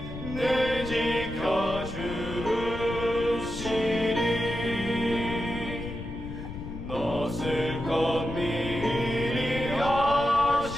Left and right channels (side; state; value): left; noise; rumble, 9 dB below the sound